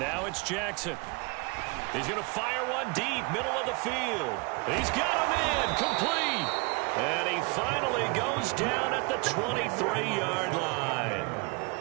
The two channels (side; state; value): left; quieter; 28.0 dB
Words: it's Jackson. He's going to fire one deep, middle of the field. He's got him in, complete. And he finally goes down at the 23-yard line.